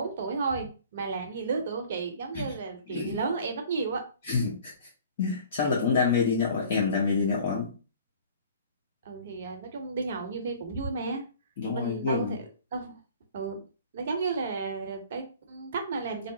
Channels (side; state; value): both; inverted; correlation -0.48